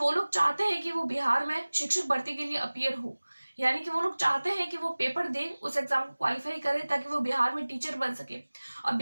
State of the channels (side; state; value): both; inverted; correlation -1.00